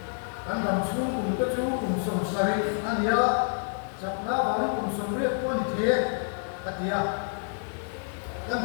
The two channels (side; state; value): right; silent; digital silence